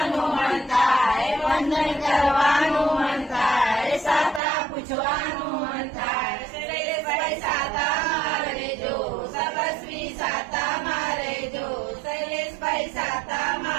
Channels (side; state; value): left; drops out; at 4.4 s